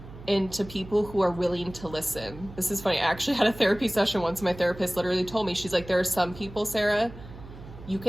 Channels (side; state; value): right; noise; hum, 16 dB below the sound